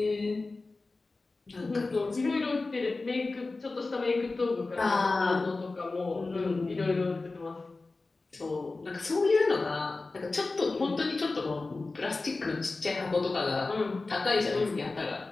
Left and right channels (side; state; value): right; quieter; 3.5 dB